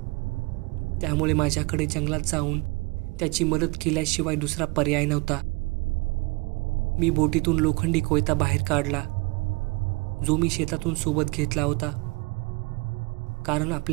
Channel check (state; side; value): quieter; left; 27.2 dB